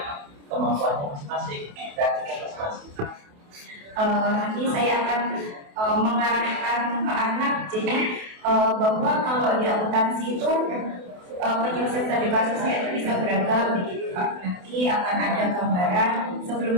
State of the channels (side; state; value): left; late; 28 ms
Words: kemampuannya masing-masing, kreativitas masing-masing. Nanti saya akan mengarahkan ke anak, jadi bahwa kalau di akuntansi itu penyelesaian studi kasusnya itu bisa beragam begitu Pak. Nanti akan ada gambaran